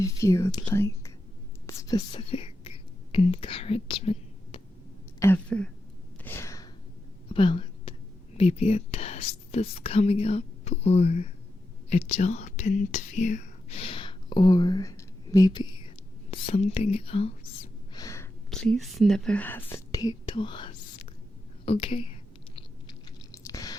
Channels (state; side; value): normal; both; correlation 0.88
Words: of you would like specific encouragement ever about maybe a test that's coming up, or a job interview, or maybe something else, please never hesitate to ask, okay?